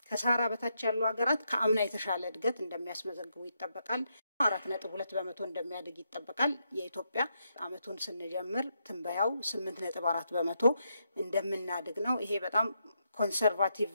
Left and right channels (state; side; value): inverted; both; correlation -0.80